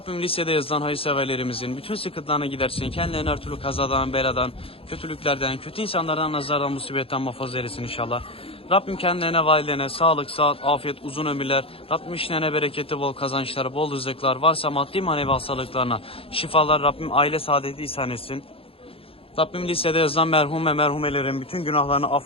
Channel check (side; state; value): right; late; 0.27 ms